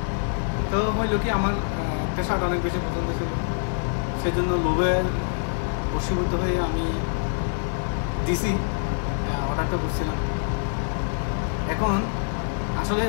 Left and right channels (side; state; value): right; silent; 62 dB below the other